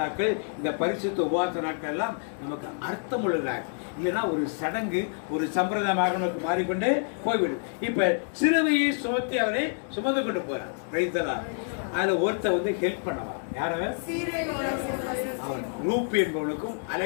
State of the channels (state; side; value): silent; right; 58 dB below the other